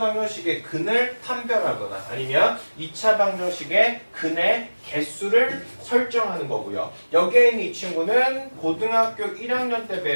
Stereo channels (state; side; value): inverted; both; correlation -1.00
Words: 근을 판별하거나 아니면 2차 방정식의 근의 개수를 설정하는 거고요. 여기에 있는 이 친구는 고등학교 1학년 때